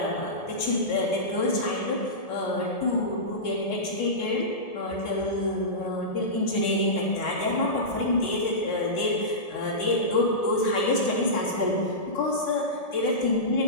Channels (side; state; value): right; late; 1.7 ms